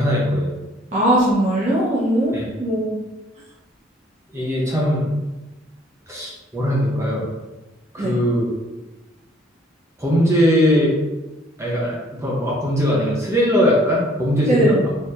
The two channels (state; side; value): normal; both; correlation 0.60